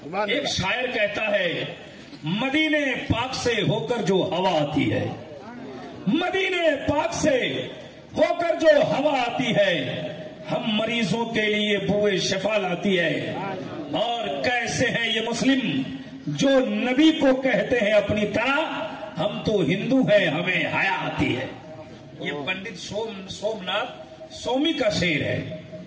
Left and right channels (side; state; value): both; identical; correlation 1.00